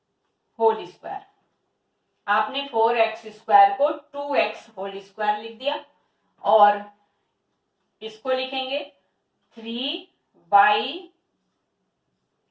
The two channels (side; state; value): both; identical; correlation 1.00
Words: होल स्क्वायर। आपने 4x स्क्वायर को 2x होल स्क्वायर लिख दिया, और इसको लिखेंगे 3y